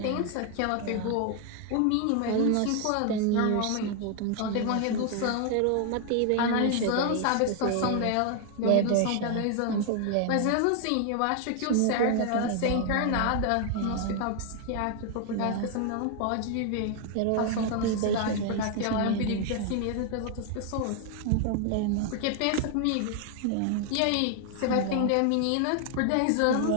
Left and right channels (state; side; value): different; both; correlation 0.00